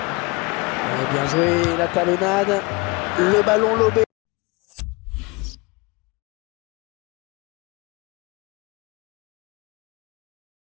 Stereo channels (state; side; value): quieter; right; 27.0 dB